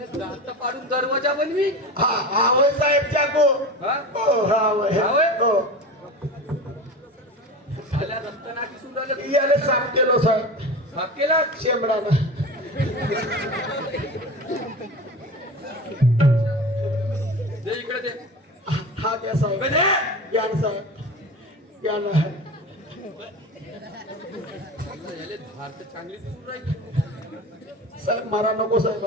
पाडून दरवाजा बनवी. हा होय साहेब चाको. हो हा हो झाल्या रक्तना दिसून राहिलं. याला साफ केलो साहेब. साफ केला शेंबडानं. दे इकडे दे. हा द्या साहेब. या ना साहेब या ना. याले धार तर चांगली दिसून राहिली. साहेब मारा नको साहेब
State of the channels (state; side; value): normal; both; correlation 0.30